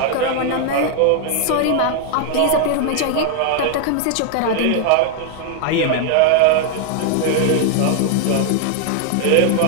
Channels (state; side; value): different; both; correlation 0.00